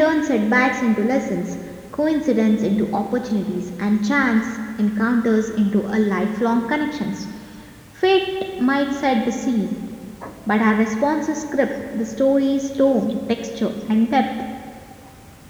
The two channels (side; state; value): both; identical; correlation 1.00